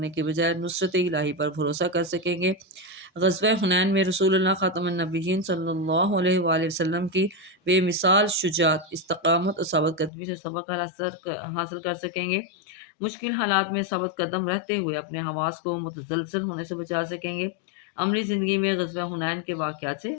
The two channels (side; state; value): right; drops out; at 10.1 s